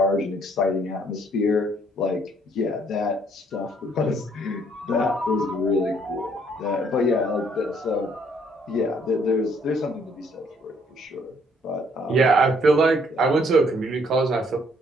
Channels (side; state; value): both; normal; correlation 0.65